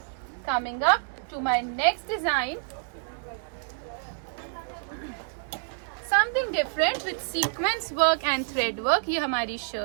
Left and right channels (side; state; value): left; silent; digital silence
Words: Coming up to my next design, something different with sequence work and thread work. ये हमारी